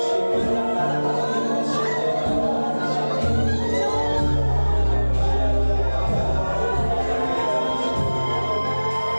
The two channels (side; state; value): both; inverted; correlation -1.00